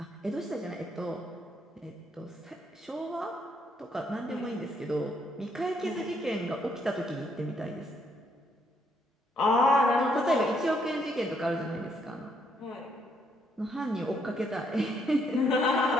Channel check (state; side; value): normal; both; correlation 0.72